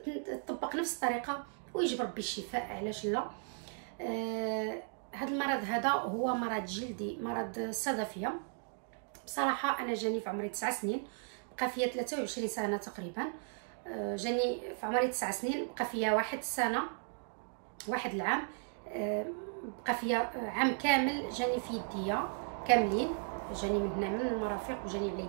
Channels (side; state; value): left; silent; 54 dB below the other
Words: تطبق نفس الطريقه ويجي بربي الشفاء، علاش لا. هذا المرض هذا هو مرض جلدي، مرض الصدفيه. بصراحه انا جاني في عمري 9 سنين، بقى فيا 23 سنه تقريبا. جاني في عمري 9 سنين، بقى فيا واحد العام، بقى فيا عام كامل جاني في يديا كاملين، جاني من هنا من المرافق وجاني على